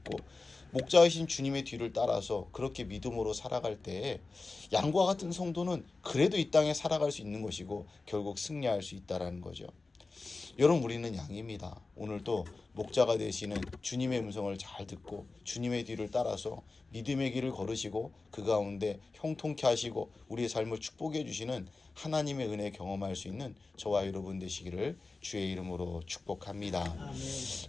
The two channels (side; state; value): right; quieter; 3.7 dB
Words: 목자이신 주님의 뒤를 따라서 그렇게 믿음으로 살아갈 때 양과 같은 성도는 그래도 이 땅에 살아갈 수 있는 것이고 결국 승리할 수 있다라는 거죠. 여러분, 우리는 양입니다. 오늘도 목자가 되시는 주님의 음성을 잘 듣고 주님의 뒤를 따라서 믿음의 길을 걸으시고 그 가운데 형통케 하시고 우리의 삶을 축복해 주시는 하나님의 은혜 경험할 수 있는 저와 여러분 되시기를 주의 이름으로 축복합니다. 아멘.